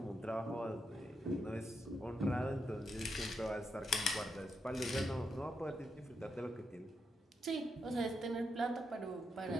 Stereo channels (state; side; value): normal; both; correlation 0.83